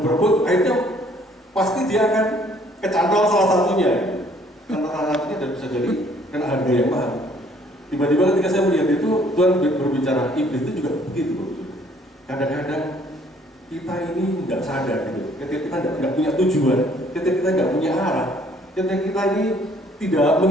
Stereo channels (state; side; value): normal; both; correlation 0.61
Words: berebut akhirnya pasti dia akan kecantol salah satunya. Karena salah satunya dan bisa jadi kena harga yang mahal. Tiba-tiba ketika saya melihat itu, Tuhan berbicara, iblis itu juga begitu. Kadang-kadang kita ini nggak sadar gitu. Ketika kita nggak punya tujuan, ketika kita nggak punya arah, ketika kita ini tidak